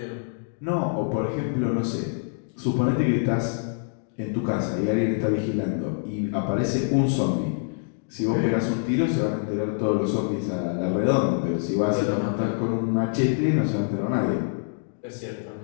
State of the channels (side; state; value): right; silent; digital silence